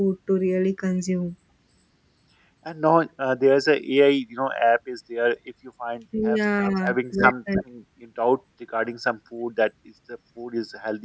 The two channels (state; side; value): identical; both; correlation 1.00